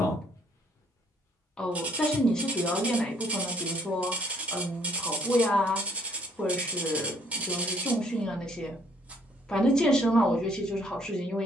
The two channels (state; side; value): normal; both; correlation 0.65